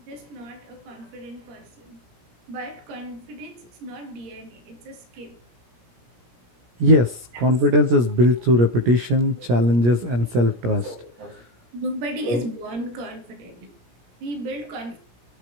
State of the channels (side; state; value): left; late; 17 ms